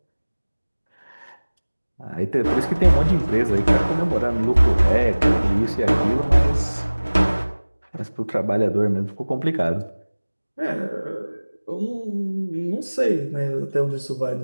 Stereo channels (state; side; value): inverted; both; correlation -1.00